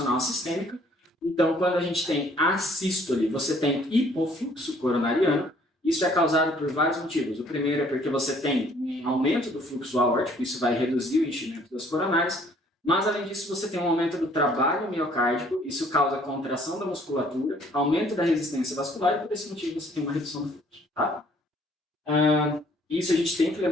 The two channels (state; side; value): normal; both; correlation 0.60